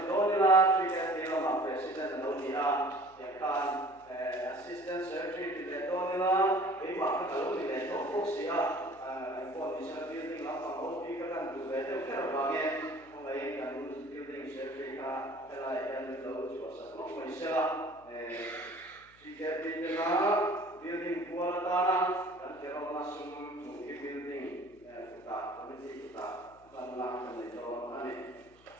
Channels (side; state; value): left; noise; hum, 28 dB below the sound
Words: đó là truy cái gì là president là đâu đi à yang kan assistant secretary thì đó là cái mà cái đâu thì để nó phúc sĩ à condition building làm bằng hậu phi các căn tủ về theo cái là nghe không ấy cái building secretary ka hay là em đâu chỉ có sản xuất mới sẽ chỉ cái building là building của ta là cái cái là sum chủ cái building của ta committee của ta ban làm cái này cho anh ấy